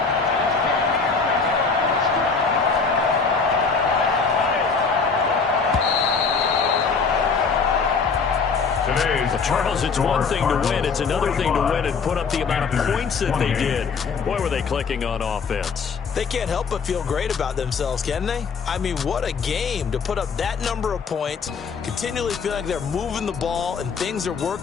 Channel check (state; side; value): quieter; right; 5.2 dB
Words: Charles, it's one thing to win. It's another thing to win and put up the amount of points that they did. Boy, were they clicking on offense. They can't help but feel great about themselves, can they? I mean, what a game to put up that number of points, continually feeling like they're moving the ball and things are